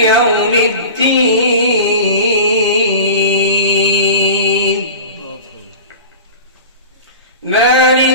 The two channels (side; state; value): both; inverted; correlation -0.34